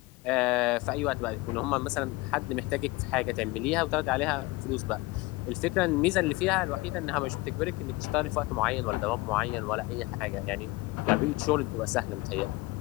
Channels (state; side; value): quieter; right; 22.0 dB